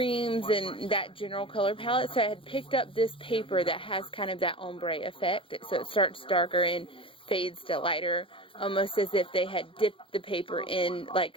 and that general color palette. So I had picked up this paper that has kind of that ombre effect. So it starts darker and fades to lighter, almost as if they had dipped the paper in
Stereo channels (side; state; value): right; late; 0.25 ms